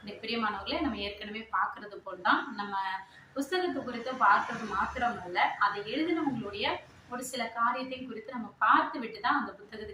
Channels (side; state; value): both; identical; correlation 1.00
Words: இந்த பிரியமானவர்களே, நம்ம ஏற்கனவே பார்க்கறது போல் தான் நம்ம புஸ்தகத்தை குறித்து பார்க்கறது மாத்திரமல்ல, அதை எழுதினவங்களுடைய ஒரு சில காரியத்தையும் குறித்து நம்ம பார்த்து விட்டு தான் அந்த